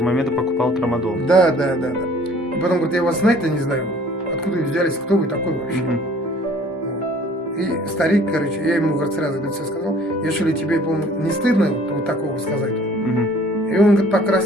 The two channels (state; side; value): normal; both; correlation 0.54